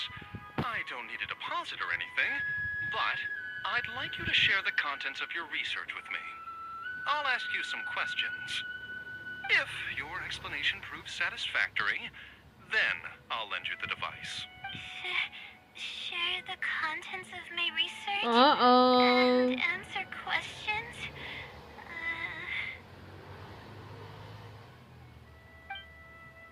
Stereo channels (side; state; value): both; identical; correlation 1.00